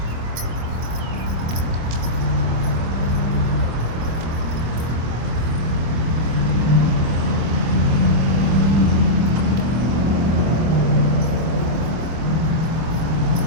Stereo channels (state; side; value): late; left; 25 ms